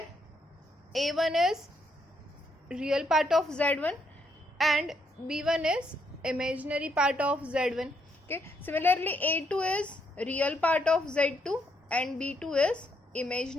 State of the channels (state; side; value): normal; both; correlation 0.75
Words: a1 is real part of z1 and b1 is imaginary part of z1. Okay, similarly a2 is real part of z2 and b2 is